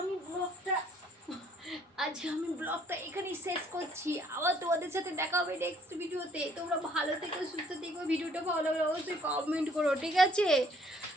ব্লগটা এখানেই শেষ করছি। আবার তোমাদের সাথে দেখা হবে নেক্সট ভিডিওতে। তোমরা ভালো থেকো, সুস্থ থেকো। ভিডিওটা ভালো লাগলে অবশ্যই কমেন্ট করো, ঠিক আছে?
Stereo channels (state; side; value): normal; both; correlation 0.62